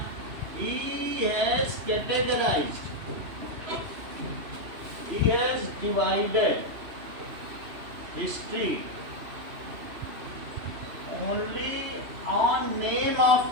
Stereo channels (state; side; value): late; left; 3.0 ms